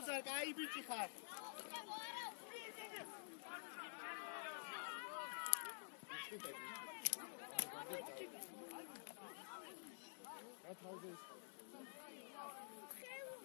კაი ბიჭი ხარ. გათავზე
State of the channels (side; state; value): right; silent; digital silence